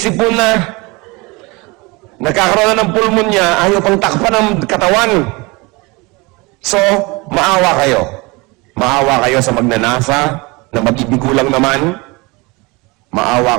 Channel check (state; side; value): quieter; left; 25.6 dB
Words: na. Nagkakaroon na ng pulmonya, ayaw pang takpan ng katawan. So, maawa kayo. Maawa kayo sa magnanasa, na mag-ibigo lang naman. Maawa